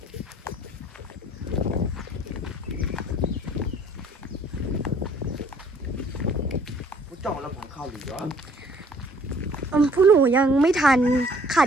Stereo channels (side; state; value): both; normal; correlation 0.58